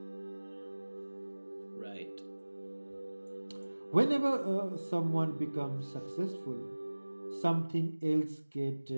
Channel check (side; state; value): both; inverted; correlation -1.00